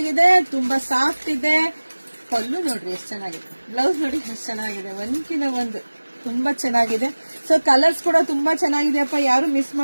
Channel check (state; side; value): inverted; both; correlation -1.00